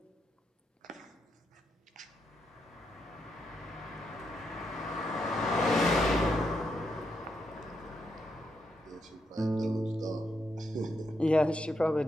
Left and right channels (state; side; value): normal; both; correlation 0.81